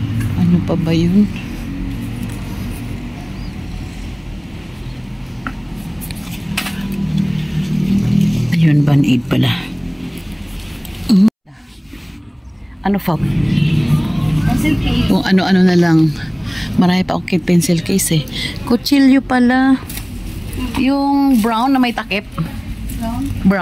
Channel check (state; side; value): identical; both; correlation 1.00